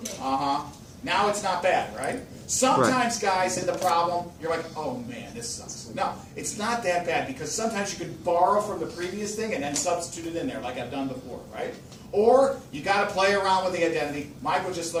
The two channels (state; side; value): identical; both; correlation 1.00